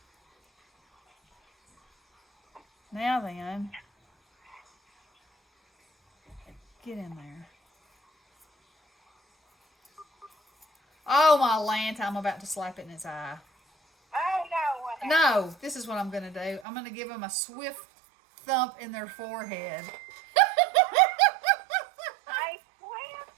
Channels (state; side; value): drops out; left; at 16.7 s